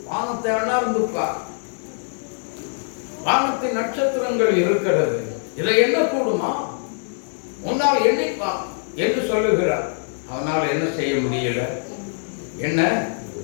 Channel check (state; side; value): silent; right; digital silence